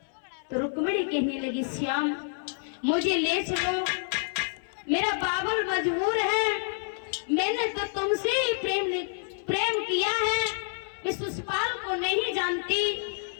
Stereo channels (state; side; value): silent; right; 59 dB below the other